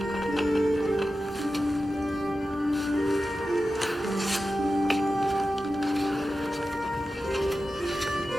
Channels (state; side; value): normal; both; correlation 0.93